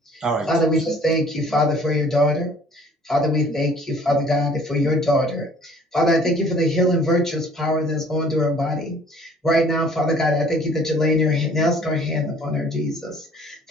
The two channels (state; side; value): normal; both; correlation 0.54